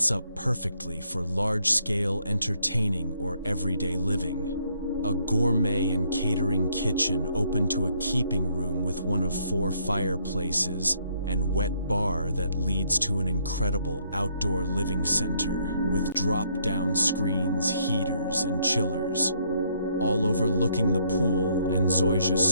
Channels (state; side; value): inverted; both; correlation -0.70